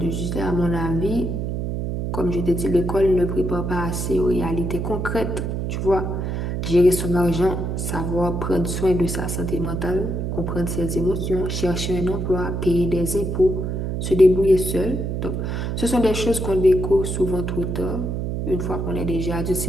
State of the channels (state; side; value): noise; right; hum, 2 dB below the sound